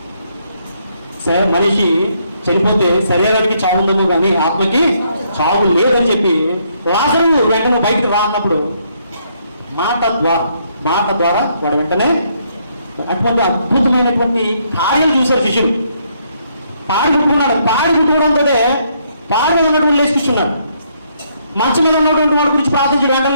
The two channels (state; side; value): inverted; both; correlation -0.72